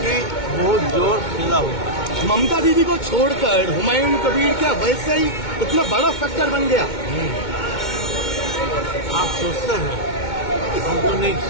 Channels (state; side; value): late; right; 2.2 ms